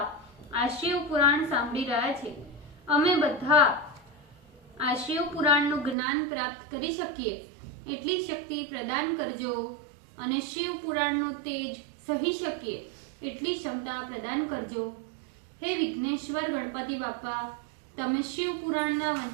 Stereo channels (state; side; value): drops out; left; at 6.0 s